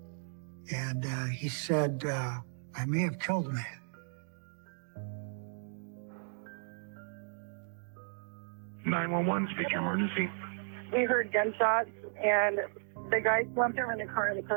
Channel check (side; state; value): left; silent; digital silence